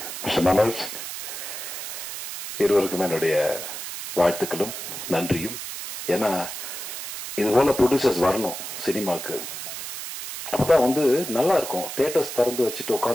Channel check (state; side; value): noise; right; hiss, 8 dB below the sound